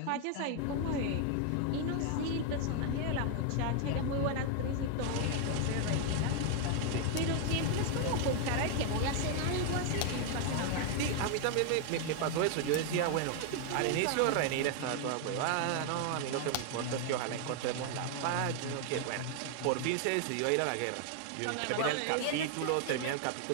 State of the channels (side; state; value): both; different; correlation 0.00